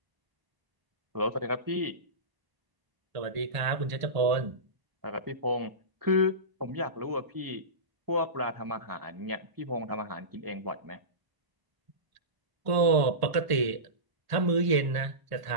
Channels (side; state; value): left; late; 1.0 ms